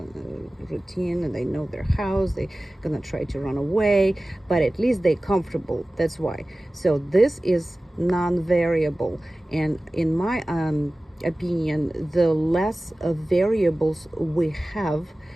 Routine, and they know their house. They're gonna try to run away, but at least they're comfortable. That's why. So this is non-variable, and in my opinion, the less variables we have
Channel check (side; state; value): both; normal; correlation 0.97